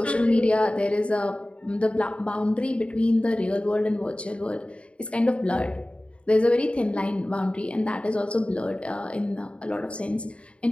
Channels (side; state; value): right; late; 0.060 ms